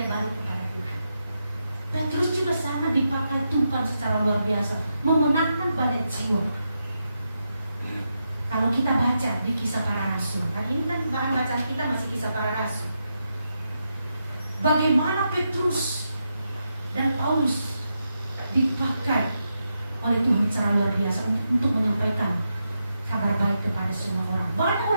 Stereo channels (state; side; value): inverted; both; correlation -0.85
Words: balik kepada Tuhan. Petrus juga sama dipakai Tuhan secara luar biasa, memenangkan banyak jiwa. Kalau kita baca di Kisah Para Rasul, kan ini kan bahan bacaan kita masih Kisah Para Rasul. Bagaimana Petrus dan Paulus dipakai oleh Tuhan secara luar biasa untuk menyampaikan kabar baik kepada semua orang. Banyak